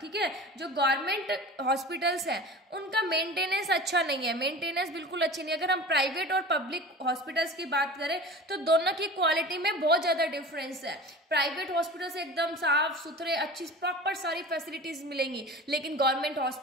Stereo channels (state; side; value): normal; both; correlation 0.36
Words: ठीक है, जो गवर्नमेंट हॉस्पिटल्स हैं उनका मेंटेनेंस अच्छा नहीं है, मेंटेनेंस बिल्कुल अच्छी नहीं है। अगर हम प्राइवेट और पब्लिक हॉस्पिटल्स की बात करें तो दोनों की क्वालिटी में बहुत ज़्यादा डिफरेंस है। प्राइवेट हॉस्पिटल्स एकदम साफ सुथरे अच्छी प्रॉपर सारी फैसिलिटीज मिलेंगी, लेकिन गवर्नमेंट